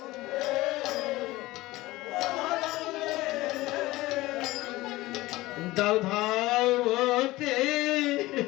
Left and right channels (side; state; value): right; quieter; 18.8 dB